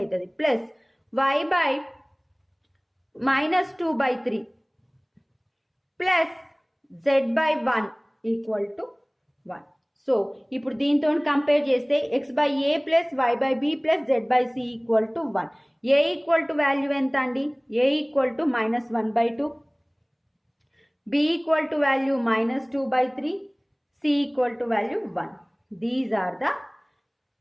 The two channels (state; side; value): identical; both; correlation 1.00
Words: plus y/-2/3 plus z/1 equal to 1. So ఇప్పుడు దీంతో కంపేర్ చేస్తే x/a plus y/b plus z/c equal to 1. a equal to value ఎంత అండి, a equal to -1/2, b equal to value -2/3, c equal to value 1. These are the